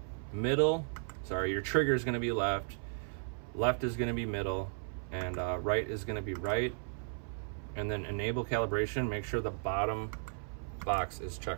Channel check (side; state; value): left; silent; 54 dB below the other